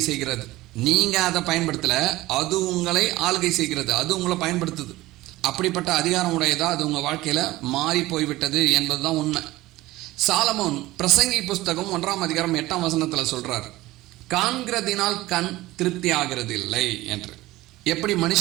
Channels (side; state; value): left; quieter; 18.0 dB